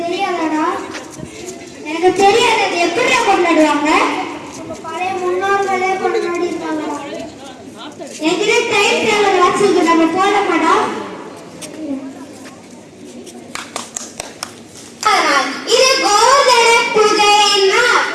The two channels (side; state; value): both; identical; correlation 1.00